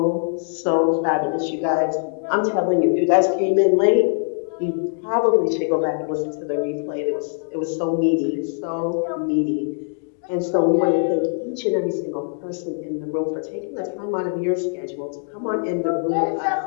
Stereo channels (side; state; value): right; silent; digital silence